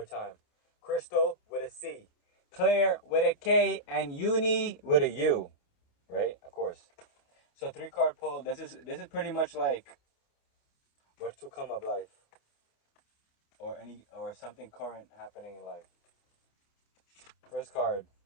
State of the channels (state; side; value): late; right; 28 ms